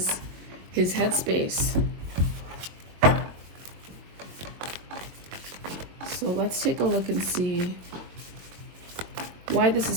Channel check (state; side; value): late; left; 22 ms